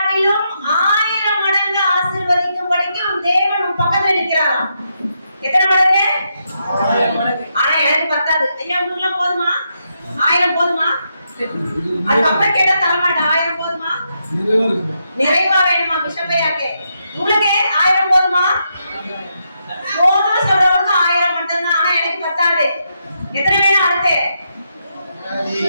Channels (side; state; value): both; inverted; correlation -0.81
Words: 1000 மடங்கு ஆசீர்வதிக்கும்படிக்கு உன் தேவன் உன் பக்கத்துல நிற்கிறாராம். எத்தனை மடங்கு? 1000 மடங்கு. ஆனா எனக்கு பத்தாது. ஐயா உங்களுக்கு போதுமா? 1000 போதுமா? அதுக்கப்புறம் கேட்டா தரமாட்டா. 1000 போதுமா? நிறைவா வேணுமா? பிஷப்பையாக்கே உங்களுக்கு 1000 போதுமா? போதும் சொல்றவங்க 1000 மட்டும்தான். ஆனா எனக்கு பத்தாது. எத்தனை வேணும்? அடுத்து